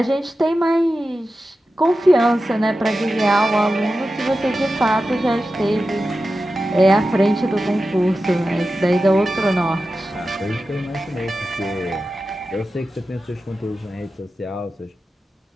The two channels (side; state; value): both; normal; correlation 0.93